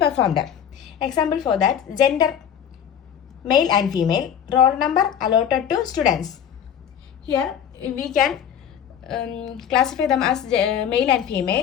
Example for that, gender, male and female, roll number allotted to students. Here, we can classify them as male and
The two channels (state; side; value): quieter; right; 8.9 dB